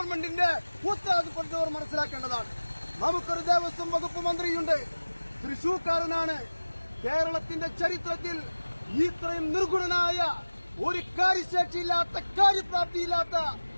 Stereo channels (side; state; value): both; inverted; correlation -1.00